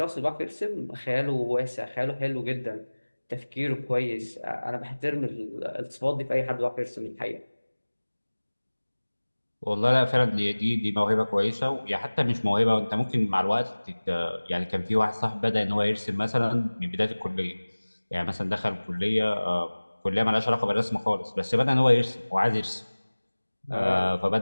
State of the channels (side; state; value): both; inverted; correlation -1.00